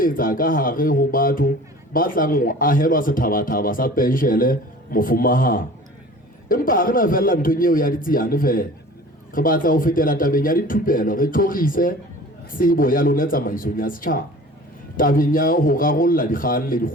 ka hare ho batho ba tlang ho ahelwa sethabathaba sa penshele mofumahana empa ha re na fella nthong eo ya ditsiane fela re batla ho fetela tabeng ya dithupelo re tlorise tsebo ya lona tsamaisong ya setjhaba tabeng ya ho rarolla dikgang le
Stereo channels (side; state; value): both; normal; correlation 0.43